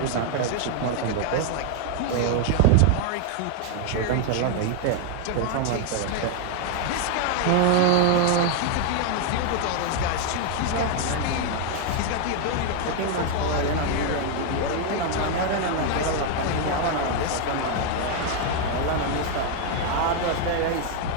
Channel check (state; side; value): different; both; correlation 0.00